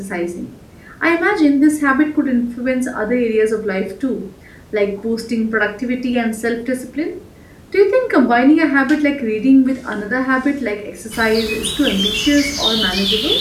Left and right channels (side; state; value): both; identical; correlation 1.00